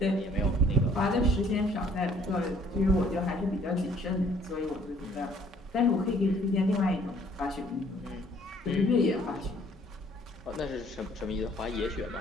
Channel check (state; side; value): normal; both; correlation 0.60